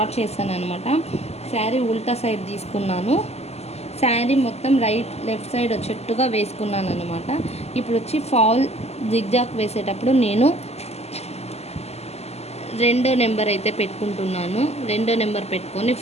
చేశాను అనమాట. శారీ ఉల్టా సైడ్ తీసుకున్నాను. శారీ మొత్తం లెఫ్ట్ సైడ్ వచ్చేట్టుగా వేసుకున్నాను అనమాట. ఇప్పుడు వచ్చి ఫాల్ జిగ్జాగ్ వేసేటప్పుడు నేను 2వ నెంబర్ అయితే పెట్టుకుంటున్నాను. 2వ నెంబర్ పెట్టుకొని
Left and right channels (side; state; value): right; late; 0.30 ms